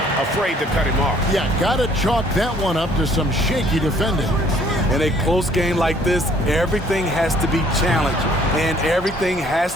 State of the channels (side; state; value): both; normal; correlation 0.60